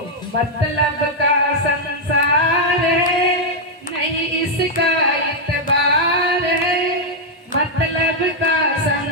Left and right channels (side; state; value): both; normal; correlation -0.02